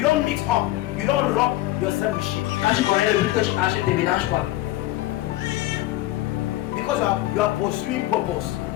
don't mix up. You don't rub yourself with shit. Quand tu connais le but que tu achètes, ne mélange pas. Because you are pursuing purpose.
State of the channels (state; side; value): quieter; right; 16.6 dB